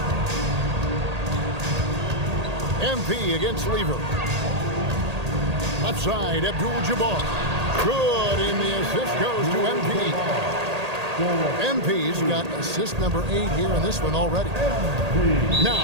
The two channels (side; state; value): left; late; 1.8 ms